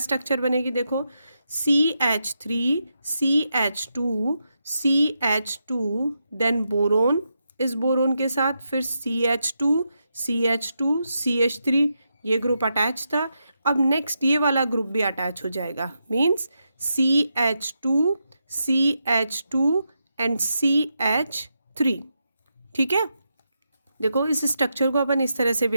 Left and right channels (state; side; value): inverted; both; correlation -0.85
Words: बनेगी देखो, CH3 CH2 CH2 then boron, इस बोरोन के साथ फिर CH2 CH2 CH3, ये ग्रुप अटैच था। अब नेक्स्ट ये वाला ग्रुप भी अटैच हो जाएगा, means CH2 CH2 and CH3। ठीक है, देखो इस स्ट्रक्चर को अपन इस तरह से भी